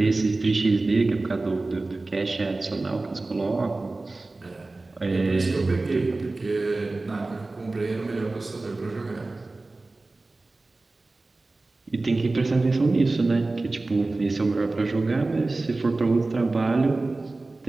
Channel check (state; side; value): quieter; left; 3.2 dB